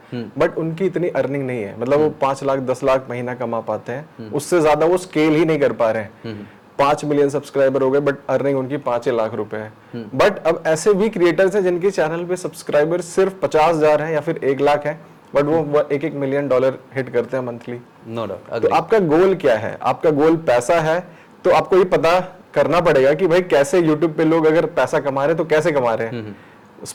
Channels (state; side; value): identical; both; correlation 1.00